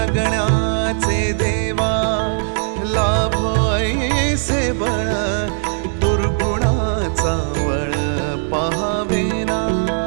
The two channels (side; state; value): left; silent; 67 dB below the other